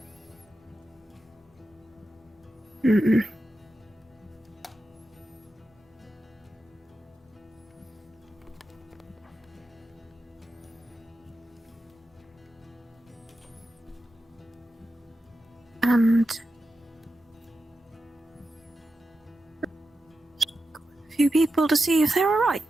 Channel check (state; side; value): normal; both; correlation 0.90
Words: Mm-mm. And a few people to see if they're alright.